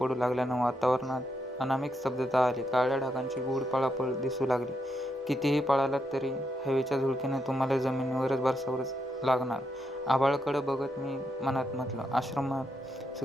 लागल्यानं वातावरणात अनामिक स्तब्धता आली. काळ्या ढगांची गूढ पळापळ दिसू लागली. कितीही पळालात तरी हवेच्या झुळकीनं तुम्हाला जमिनीवरच बसावंच लागणार. आभाळाकडं बघत मी मनात म्हटलं, आश्रमात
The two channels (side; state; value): both; normal; correlation 0.81